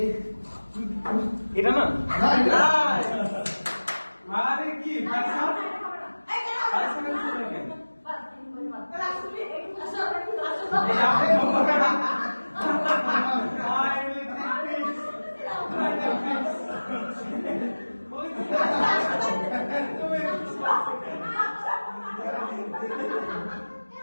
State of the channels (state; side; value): inverted; both; correlation -1.00